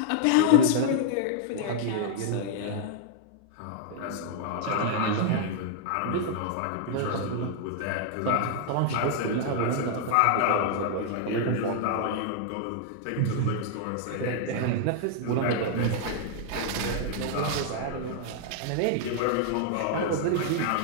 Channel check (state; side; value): different; both; correlation -0.01